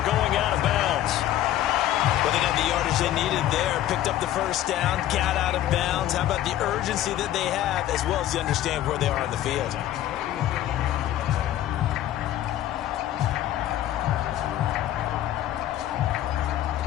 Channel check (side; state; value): right; quieter; 12.9 dB